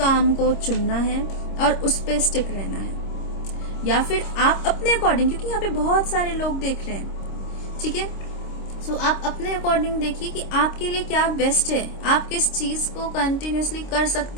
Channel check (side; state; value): right; late; 26 ms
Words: को चुनना है और उस पे स्टिक रहना है। या फिर आप अपने अकॉर्डिंग, क्योंकि यहाँ पे बहुत सारे लोग देख रहे हैं, ठीक है, सो आप अपने अकॉर्डिंग देखिए कि आपके लिए क्या बेस्ट है, आप किस चीज को कंटिन्यूअसली कर